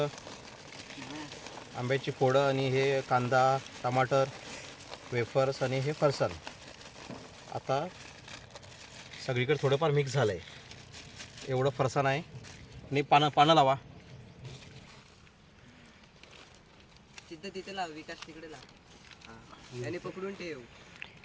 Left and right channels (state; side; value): identical; both; correlation 1.00